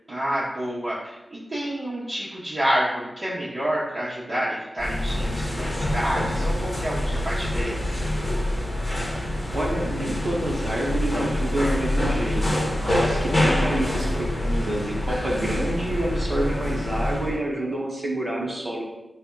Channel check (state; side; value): normal; both; correlation 0.93